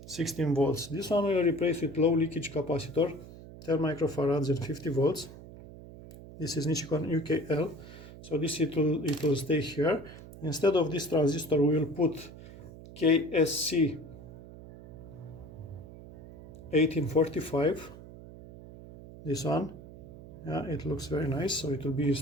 volts. This one we will replace with low leakage capacitor, 10 microfarads and 50 volts. This is Nichicon UKL, so this it will stay here. Instead of this transistor, we will put KSC 1845, this one. Yeah, it looks very nice, so it will be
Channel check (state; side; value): noise; right; hum, 16 dB below the sound